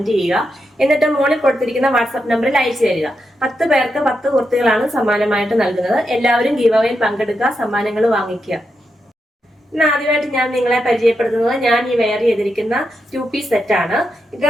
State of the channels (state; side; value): normal; both; correlation 0.85